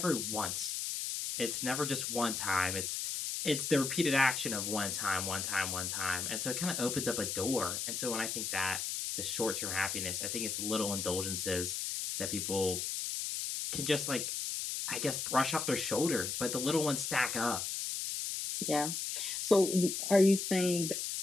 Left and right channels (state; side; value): noise; left; hiss, 2 dB below the sound